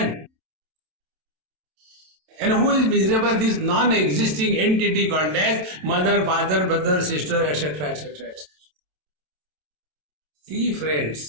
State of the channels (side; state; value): left; late; 27 ms